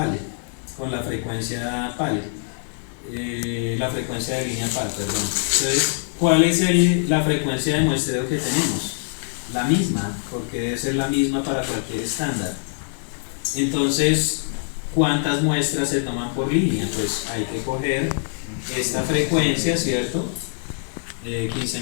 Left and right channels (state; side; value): silent; right; digital silence